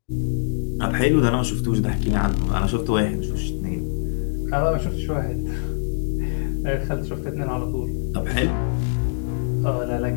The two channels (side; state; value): right; silent; digital silence